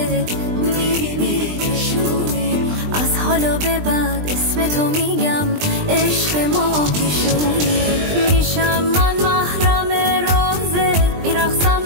میری میکشونی. از حالا به بعد اسم تو میگم عشق ما پیشونی. میشم من محرم رازت، میرقصم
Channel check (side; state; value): left; late; 20 ms